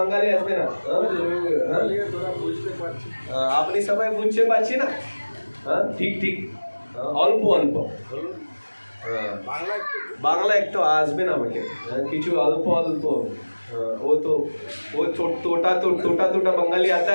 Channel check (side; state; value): both; inverted; correlation -1.00